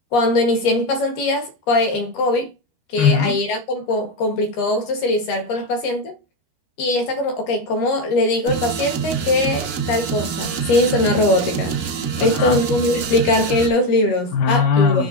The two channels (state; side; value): late; right; 13 ms